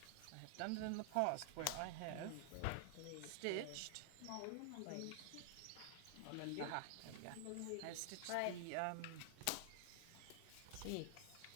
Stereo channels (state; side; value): different; both; correlation 0.00